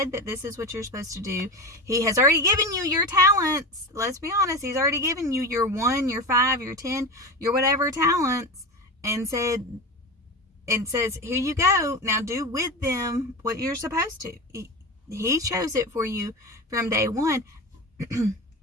that this is what you're supposed to do. He has already given you your talents. Let's be honest. He's already given you your 1, your 5, your 10, your whatever talents, and says, here you go. Now do with them what you're supposed to. He chose it for you from day one.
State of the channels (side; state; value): both; normal; correlation 0.24